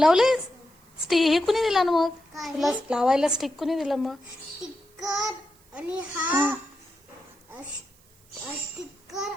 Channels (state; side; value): noise; right; hiss, 30 dB below the sound